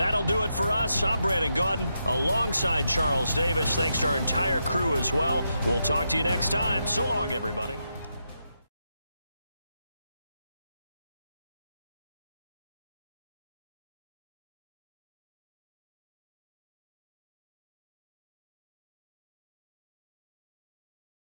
do it for us. I'm Brandon Gaudin alongside Charles Davis. Thanks to our entire crew as well. We'll talk to you next time. So long, everybody.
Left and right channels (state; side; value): inverted; both; correlation -0.84